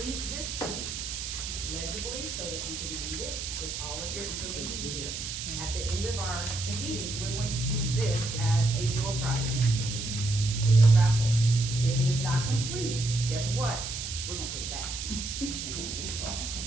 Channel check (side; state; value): right; noise; hiss, 6 dB below the sound